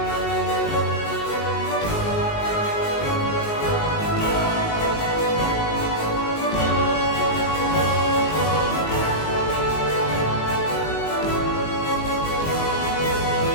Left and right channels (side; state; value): right; late; 19 ms